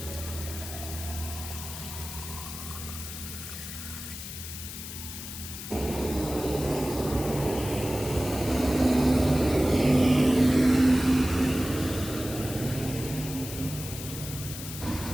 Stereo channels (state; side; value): noise; left; hiss, 9 dB below the sound